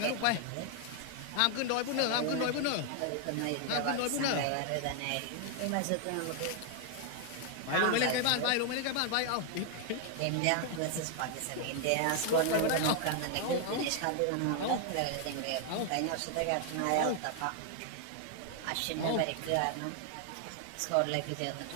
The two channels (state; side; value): different; both; correlation 0.00